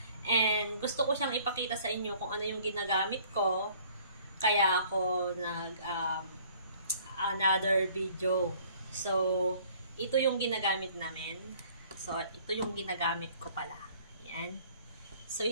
And gusto ko siyang ipakita sa inyo kung ano yung ginagamit ko, kaya ako another video. So, ito yung ginagamit namin. So, ito yung ginagamit ko pala. Yan. So,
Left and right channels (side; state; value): both; inverted; correlation -0.55